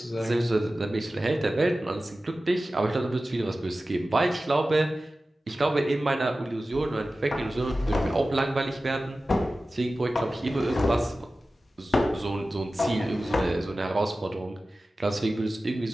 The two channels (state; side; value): normal; both; correlation 0.95